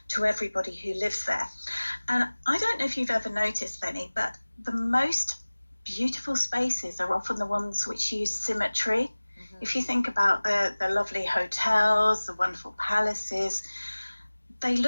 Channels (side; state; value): both; inverted; correlation -1.00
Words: to everybody who lives there. And I don't know if you've ever noticed, Lenny, but the most beautiful spaces are often the ones which use symmetry. If you think about the lovely hotels, the wonderful palaces, they